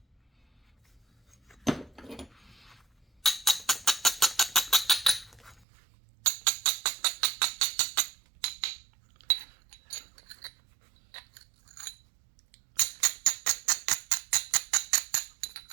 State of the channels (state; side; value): drops out; left; at 5.7 s